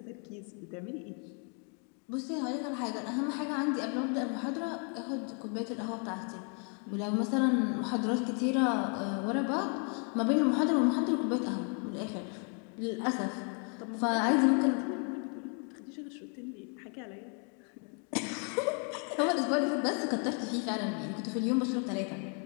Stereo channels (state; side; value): quieter; right; 39.7 dB